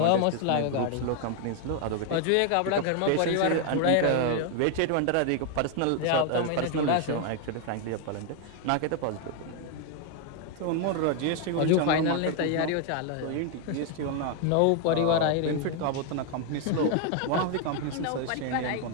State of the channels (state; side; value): different; both; correlation 0.00